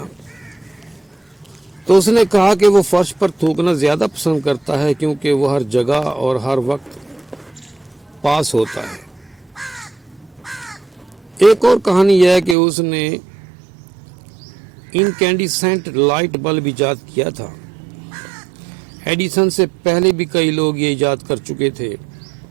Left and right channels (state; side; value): drops out; left; at 12.6 s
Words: تو اس نے کہا کہ وہ فرش پر تھوکنا زیادہ پسند کرتا ہے کیونکہ وہ ہر جگہ اور ہر وقت پاس ہوتا ہے۔ ایک اور کہانی یہ ہے کہ اس نے انکینڈیسنٹ لائٹ بلب ایجاد کیا تھا۔ ایڈیسن سے پہلے بھی کئی لوگ یہ ایجاد کر چکے تھے،